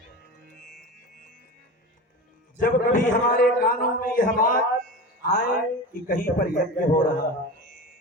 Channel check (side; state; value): both; normal; correlation 0.29